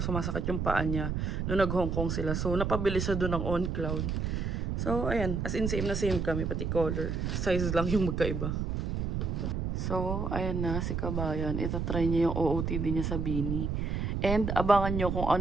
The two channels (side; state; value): right; noise; rumble, 1 dB below the sound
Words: yung paa niya. Noong nag-Hong Kong sila. So, napabili siya doon ng On Cloud. So, ayan. As in, same na same kami. Pati color. Size lang yung magkaiba. So, ayan na. Si Kabayan. Ito try niya yung OOTD niya sa Bini. And, abangan nyo kung